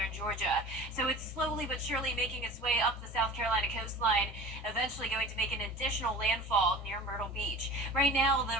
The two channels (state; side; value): normal; both; correlation 0.39